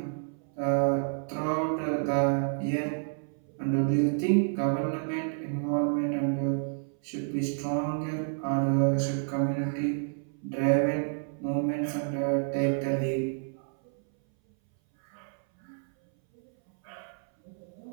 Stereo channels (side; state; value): left; silent; 58 dB below the other